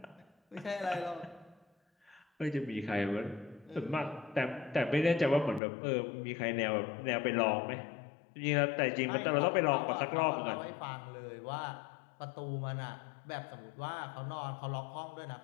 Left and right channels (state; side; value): drops out; right; at 5.6 s